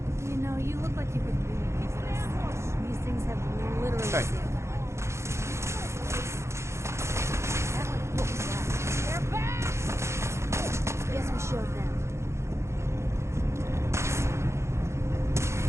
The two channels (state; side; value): late; left; 0.13 ms